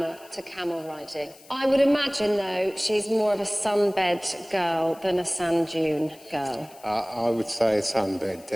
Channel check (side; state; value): left; noise; hiss, 23 dB below the sound